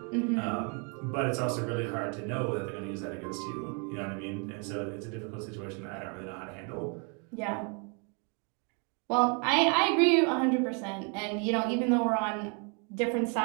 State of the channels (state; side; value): quieter; left; 35.8 dB